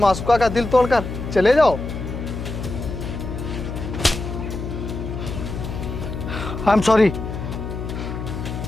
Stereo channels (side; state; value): left; noise; hum, 6 dB below the sound